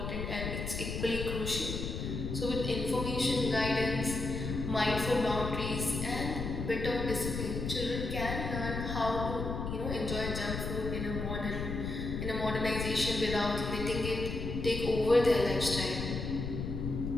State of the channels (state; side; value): noise; left; rumble, 4 dB below the sound